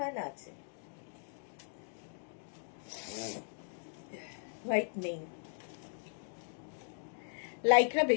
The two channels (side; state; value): right; silent; digital silence